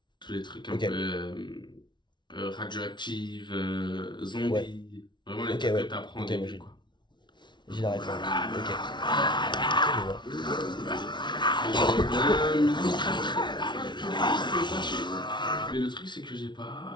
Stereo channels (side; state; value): right; late; 0.22 ms